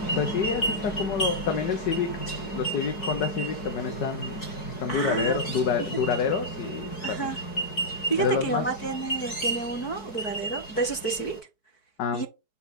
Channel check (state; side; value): late; right; 4.6 ms